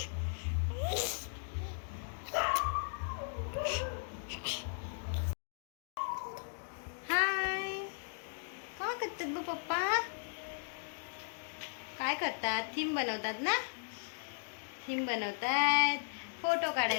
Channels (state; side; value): silent; right; digital silence